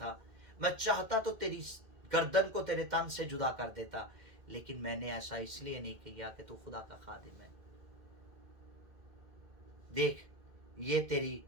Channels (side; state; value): left; late; 2.1 ms